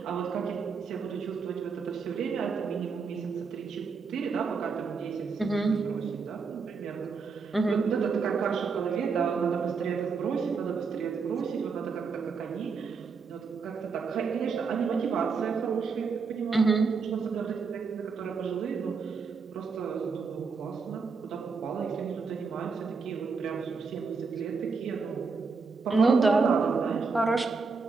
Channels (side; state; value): left; quieter; 5.0 dB